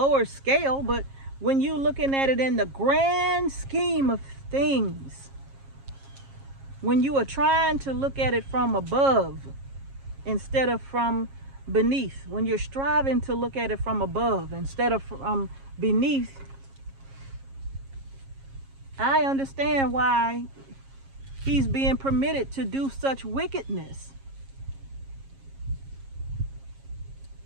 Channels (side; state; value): left; late; 7.4 ms